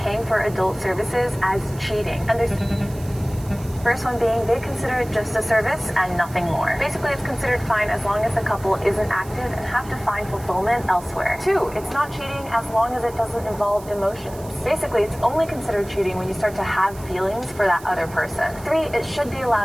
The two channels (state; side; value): noise; right; hiss, 20 dB below the sound